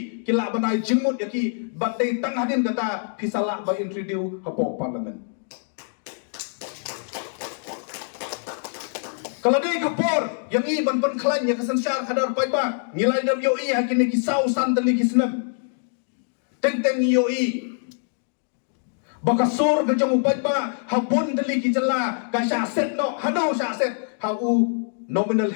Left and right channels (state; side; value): silent; right; digital silence